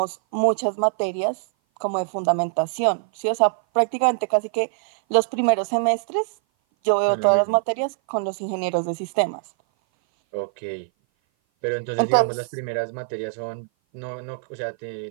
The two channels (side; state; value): left; silent; 57 dB below the other